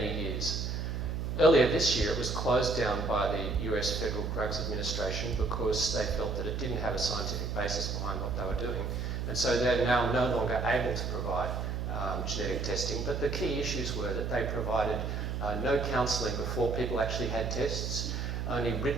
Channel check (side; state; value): right; noise; hum, 2 dB below the sound